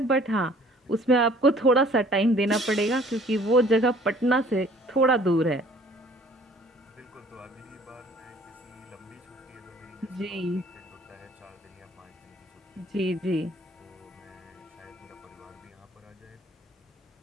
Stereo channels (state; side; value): normal; both; correlation 0.54